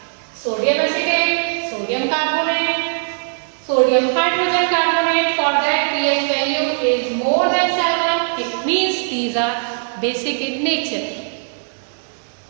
sodium acetate, sodium carbonate, sodium hydrogen carbonate, for that pH value is more than 7. It means these are basic in nature.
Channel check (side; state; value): left; silent; digital silence